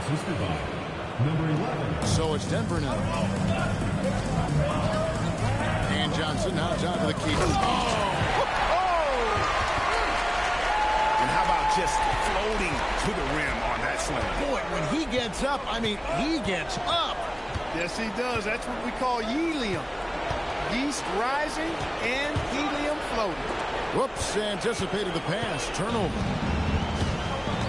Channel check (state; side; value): identical; both; correlation 1.00